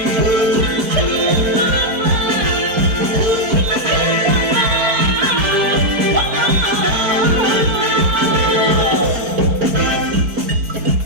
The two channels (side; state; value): left; late; 4.6 ms